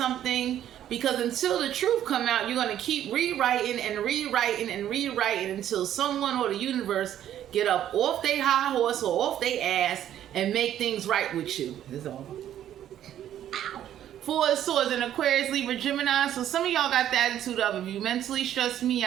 because until the truth come out, you're gonna keep rewriting and rewriting and rewriting until someone or the universe get up off their high horse or off their ass and make things right with you. That's all. 4 of Swords in Aquarius, Libra, Gemini. So some of y'all got the attitude of, if you mentally stress me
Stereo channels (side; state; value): left; quieter; 11.2 dB